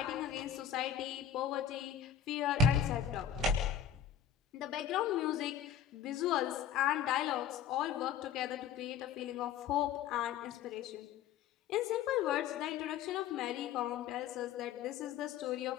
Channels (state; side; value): quieter; right; 8.7 dB